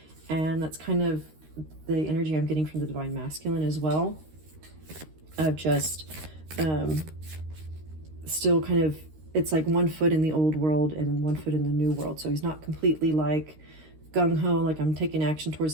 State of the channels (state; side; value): late; left; 13 ms